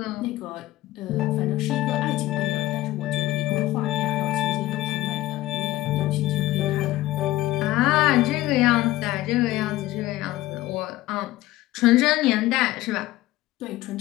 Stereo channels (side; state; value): right; quieter; 16.6 dB